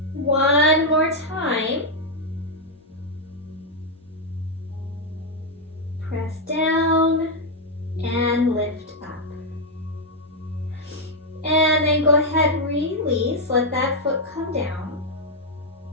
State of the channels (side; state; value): both; normal; correlation -0.01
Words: One more time. Press down and lift up. And then go ahead, release, let that foot come down.